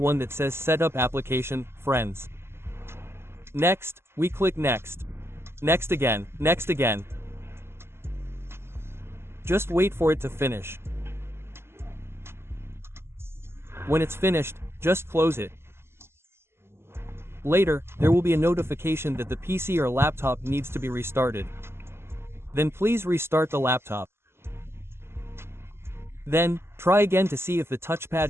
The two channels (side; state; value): left; late; 0.12 ms